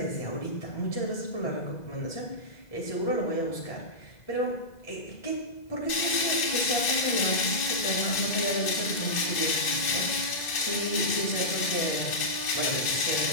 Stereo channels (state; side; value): late; right; 2.0 ms